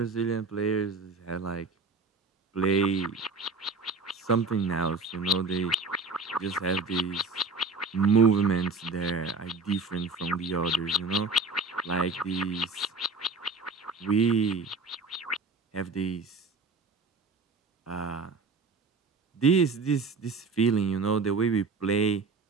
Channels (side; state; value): left; quieter; 3.8 dB